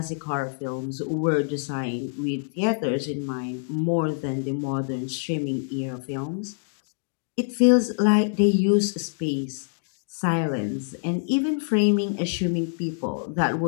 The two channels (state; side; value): silent; right; digital silence